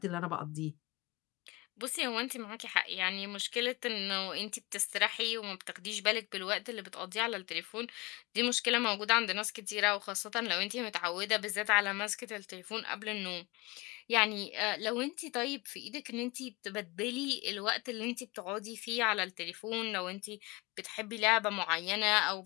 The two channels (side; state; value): right; quieter; 24.4 dB